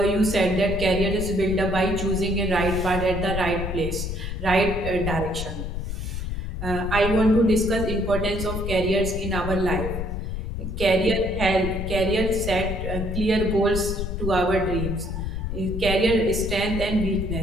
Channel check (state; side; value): noise; left; rumble, 4 dB below the sound